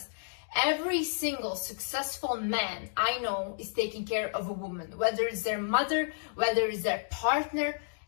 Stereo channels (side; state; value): right; silent; digital silence